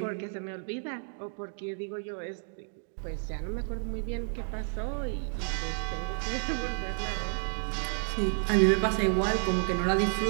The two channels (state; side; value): silent; left; 57 dB below the other